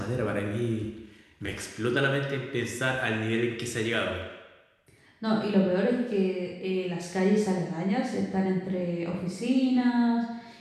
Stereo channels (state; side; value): identical; both; correlation 1.00